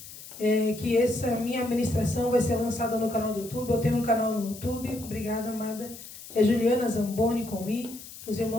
que essa minha ministração vai ser lançada no canal do YouTube. Eu tenho um canal no YouTube. Obrigada, amada. É Juliana Zamboni com I. Os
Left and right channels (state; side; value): noise; left; hiss, 15 dB below the sound